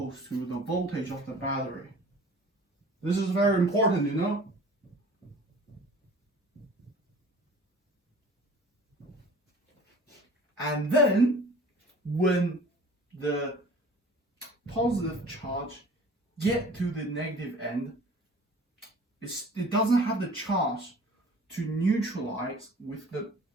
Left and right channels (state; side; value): normal; both; correlation 0.46